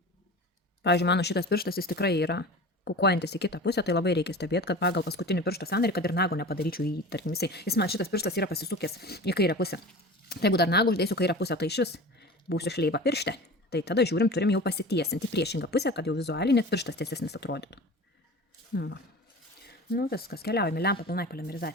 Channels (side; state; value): both; normal; correlation 0.35